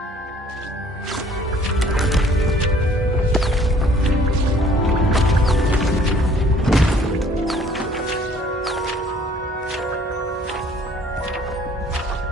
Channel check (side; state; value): both; normal; correlation 0.57